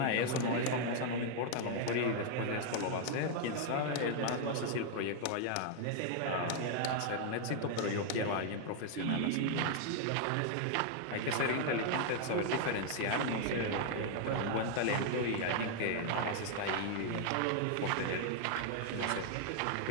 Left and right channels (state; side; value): different; both; correlation 0.00